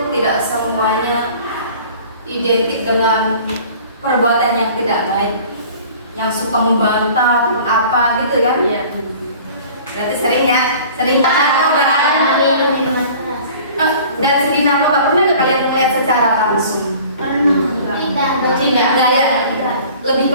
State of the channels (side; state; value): both; inverted; correlation -0.46